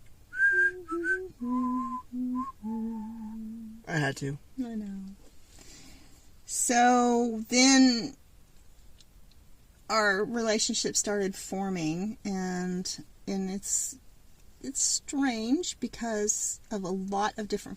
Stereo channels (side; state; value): both; identical; correlation 1.00